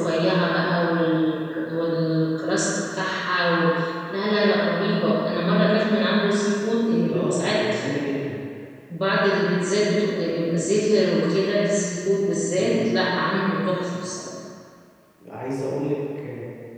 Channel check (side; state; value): both; identical; correlation 1.00